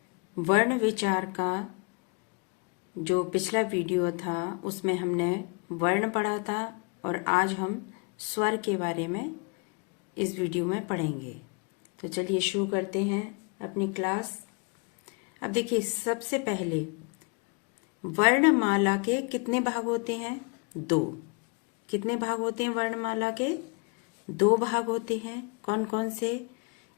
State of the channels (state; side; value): quieter; right; 33.3 dB